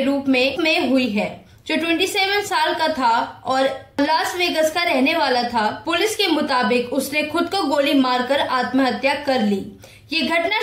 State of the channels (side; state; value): both; identical; correlation 1.00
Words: रूप में हुई है, जो 27 साल का था और लास वेगस का रहने वाला था। पुलिस के मुताबिक उसने खुद को गोली मारकर आत्महत्या कर ली। ये घटना